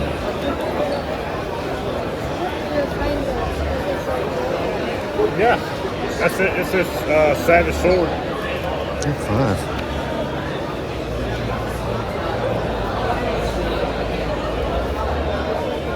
Yeah, that's it. It's this Savage Sword. 5.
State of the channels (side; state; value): both; identical; correlation 1.00